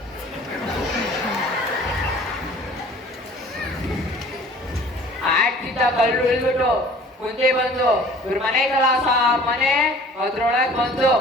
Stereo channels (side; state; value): both; normal; correlation 0.49